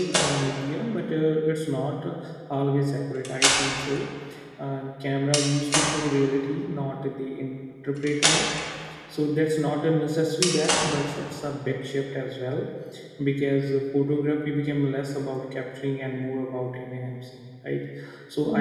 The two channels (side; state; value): both; identical; correlation 1.00